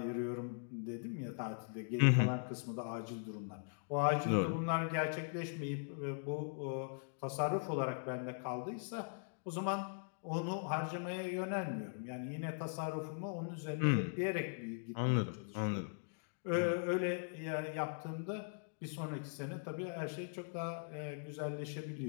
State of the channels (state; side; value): silent; right; digital silence